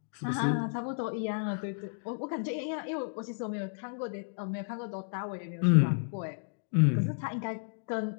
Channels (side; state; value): right; silent; digital silence